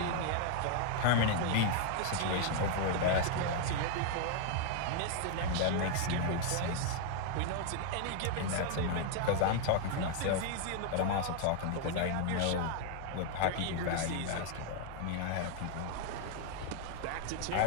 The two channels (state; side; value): different; both; correlation 0.00